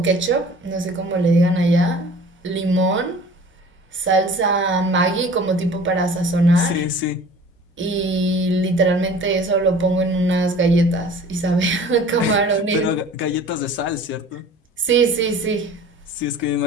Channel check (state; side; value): normal; both; correlation 0.45